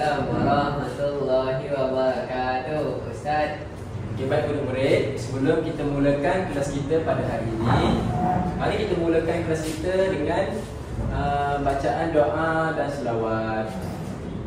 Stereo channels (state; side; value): identical; both; correlation 1.00